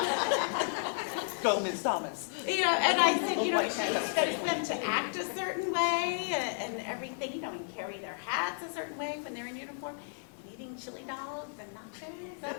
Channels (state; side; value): silent; right; digital silence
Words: Go, Ms. Thomas. And I said, she expects them to act a certain way and everything, and carry their hats a certain way when they're in uniform. And eating chili dogs and nachos,